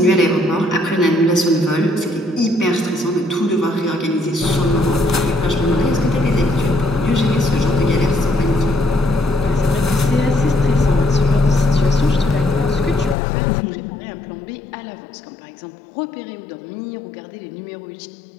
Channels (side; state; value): right; drops out; at 13.2 s